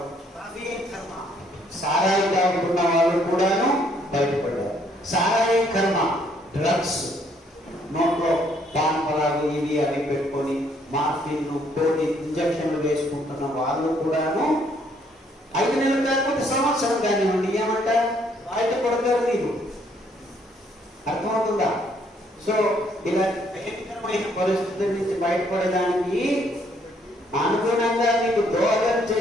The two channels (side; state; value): both; normal; correlation 0.67